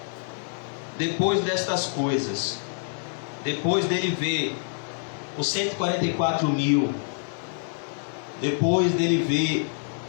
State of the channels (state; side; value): silent; right; digital silence